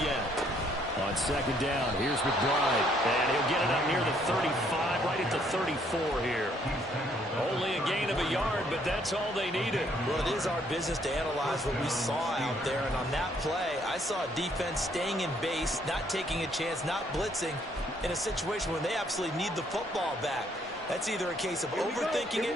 On second down, here's McBride. And he'll get it up near the 35, right at the 34 here. Only a gain of a yard, but that's all they needed. Well, it is our business to analyze what we saw out there. And on that play, I saw a defense staying in base, not taking a chance, not blitzing in a situation when they absolutely need the football back. That's either a case of overthinking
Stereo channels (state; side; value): normal; both; correlation 0.67